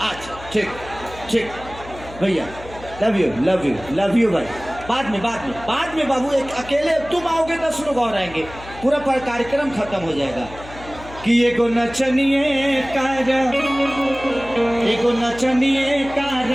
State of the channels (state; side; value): noise; left; hum, 16 dB below the sound